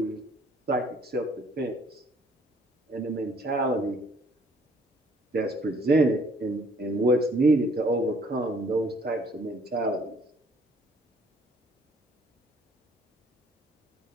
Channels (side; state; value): both; normal; correlation 0.61